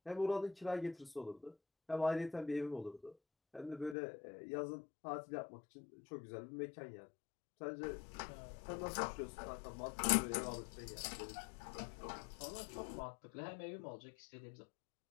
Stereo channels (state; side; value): drops out; right; at 4.0 s